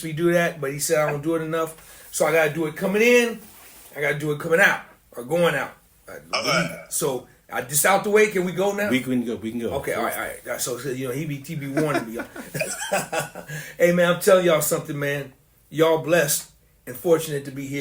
me do that, but he said I don't do it enough. So I gotta do it coming in. I gotta do it coming out or going out. So I just out the way. Can we go now? We can go. Okay, all right. So he be warning me. Hey man, I'm telling y'all something, man. Y'all blessed and fortunate to be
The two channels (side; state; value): both; identical; correlation 1.00